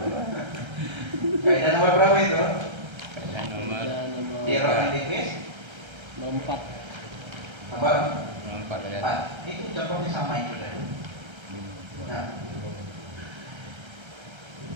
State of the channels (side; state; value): left; late; 1.3 ms